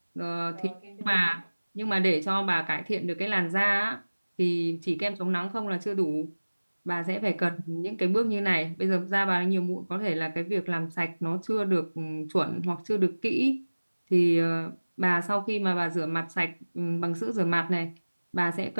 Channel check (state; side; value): inverted; both; correlation -1.00